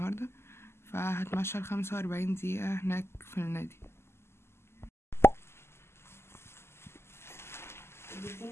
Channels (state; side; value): late; right; 0.12 ms